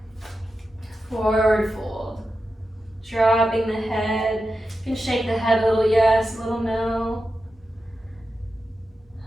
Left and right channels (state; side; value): normal; both; correlation 0.90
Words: Forward fold. Dropping the head. You can shake the head a little yes, a little no.